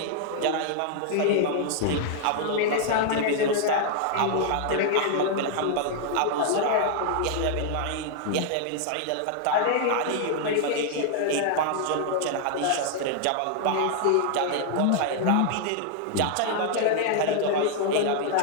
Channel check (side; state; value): both; different; correlation 0.00